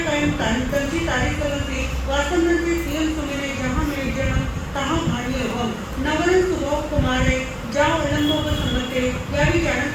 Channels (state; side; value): identical; both; correlation 1.00